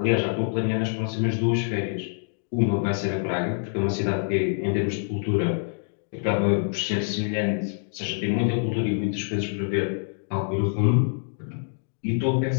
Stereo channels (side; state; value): right; silent; digital silence